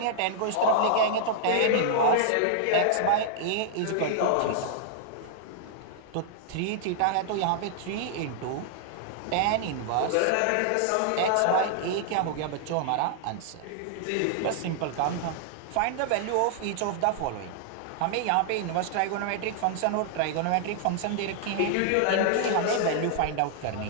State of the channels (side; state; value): both; different; correlation -0.01